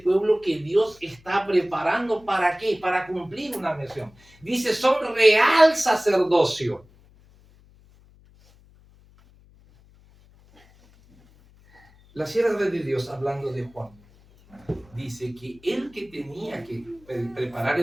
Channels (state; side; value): noise; left; hum, 28 dB below the sound